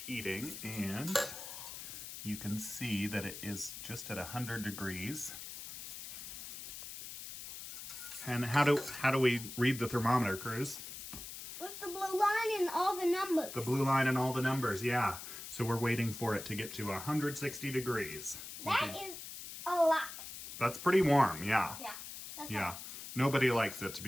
and you can see that it is just at 100 degrees. And how do we read the thermometer, Cruz? With the blue line and all the numbers. The blue line and all the numbers, yeah. So we're waiting for it to get to 160 degrees. That is a lot. That's pretty warm, yeah. Yeah. That's Yeah. right. Nobody likes it to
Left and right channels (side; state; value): left; noise; hiss, 10 dB below the sound